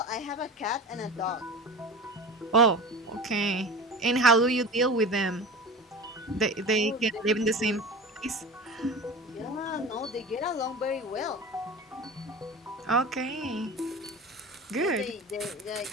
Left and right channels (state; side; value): normal; both; correlation 0.33